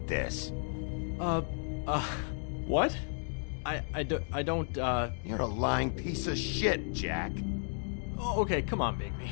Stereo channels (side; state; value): right; silent; 55 dB below the other